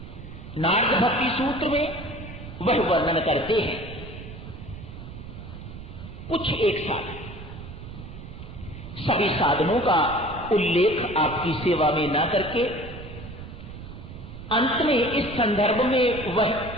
नारद भक्ति सूत्र में वह वर्णन करते हैं कुछ एक साधन, सभी साधनों का उल्लेख आपकी सेवा में न करके अंत में इस संदर्भ में वह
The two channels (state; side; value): noise; right; rumble, 12 dB below the sound